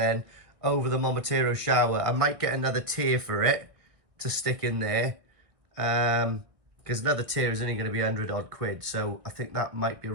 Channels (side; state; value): left; late; 1.9 ms